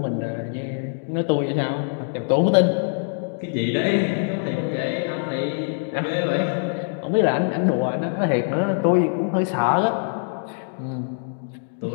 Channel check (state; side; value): silent; right; 63 dB below the other